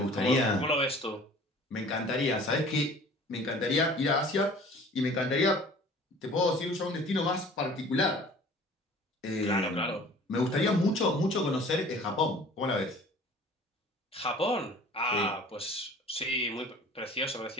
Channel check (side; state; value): both; normal; correlation 0.47